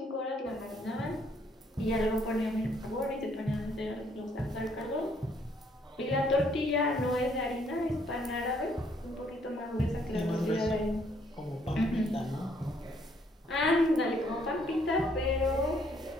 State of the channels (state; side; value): normal; both; correlation 0.67